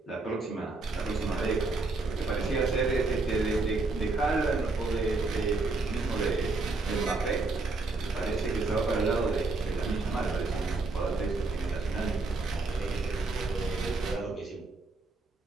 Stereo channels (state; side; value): quieter; left; 3.5 dB